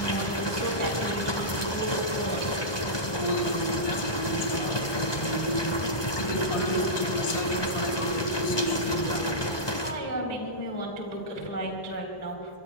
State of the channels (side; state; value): right; late; 1.2 ms